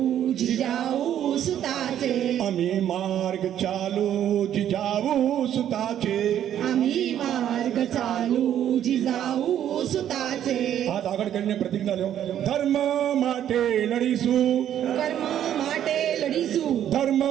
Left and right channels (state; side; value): quieter; left; 10.6 dB